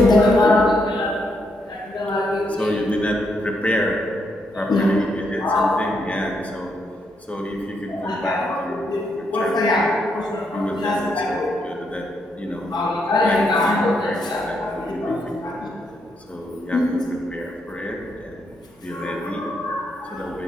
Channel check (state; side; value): normal; both; correlation 0.78